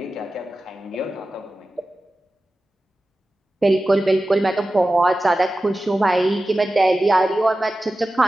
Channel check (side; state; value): both; normal; correlation 0.95